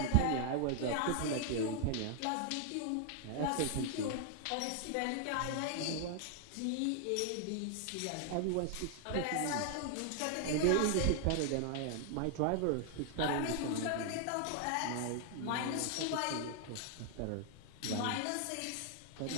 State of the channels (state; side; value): different; both; correlation 0.00